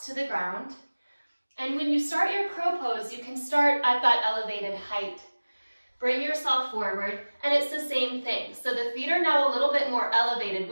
to the ground, and when you start your crow pose, you can start at that elevated height. Bring yourself forward, and it's the same thing. So the feet are now a little bit more elevated,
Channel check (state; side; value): inverted; both; correlation -1.00